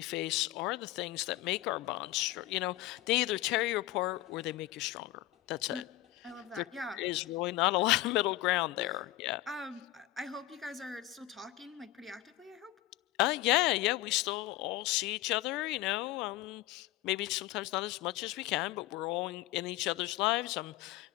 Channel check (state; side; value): quieter; right; 16.3 dB